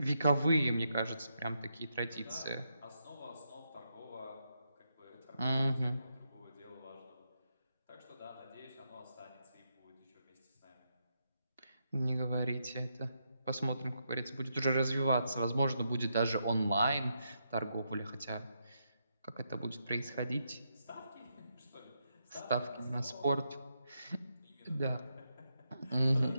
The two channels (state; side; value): inverted; both; correlation -0.82